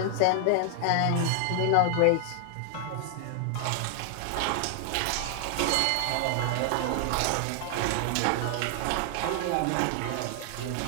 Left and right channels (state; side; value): different; both; correlation 0.00